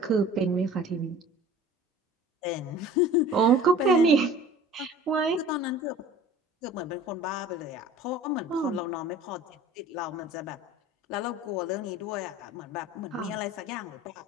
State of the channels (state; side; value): normal; both; correlation 0.44